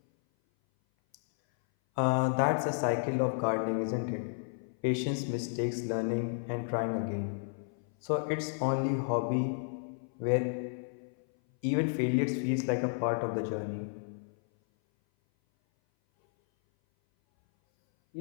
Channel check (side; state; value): right; silent; 56 dB below the other